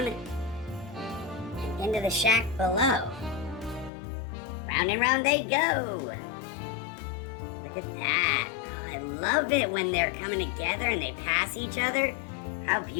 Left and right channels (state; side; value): drops out; right; at 3.9 s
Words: and into the shack below. Round and round they go. Look at that. Oh, I love it when they're coming together and they pass each other. How